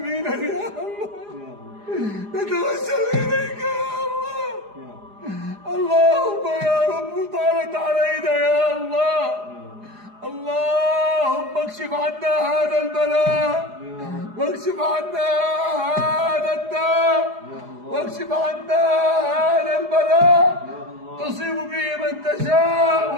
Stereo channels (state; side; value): late; left; 4.9 ms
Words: يا الله. نتوسل إليك يا الله. اللهم يا رب طالت علينا يا الله، اللهم اكشف عنا هذا البلاء، واكشف عنا هذا الداء، واكشف عنا هذا البلاء. تصيب به من تشاء